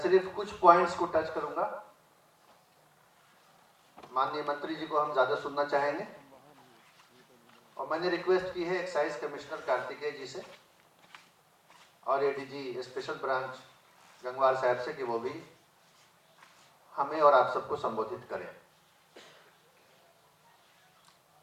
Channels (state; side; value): identical; both; correlation 1.00